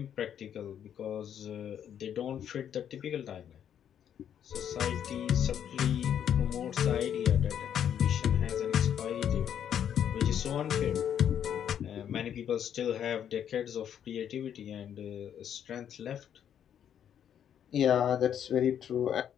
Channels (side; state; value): right; quieter; 9.3 dB